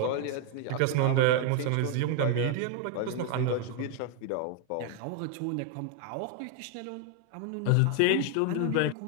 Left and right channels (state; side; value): different; both; correlation 0.00